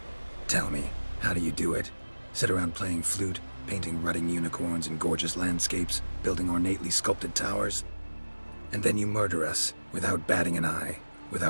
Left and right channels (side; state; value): both; inverted; correlation -1.00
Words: Tell me, how do you do it? Sit around playing flute, painting rutting unicorns in gorgeous landscapes, building ornately sculpted towers? And then you murder us, without batting an eye,